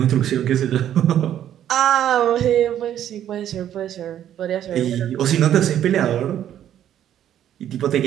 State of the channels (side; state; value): left; quieter; 10.8 dB